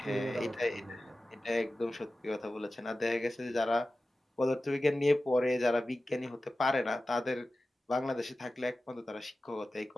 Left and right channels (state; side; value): normal; both; correlation 0.95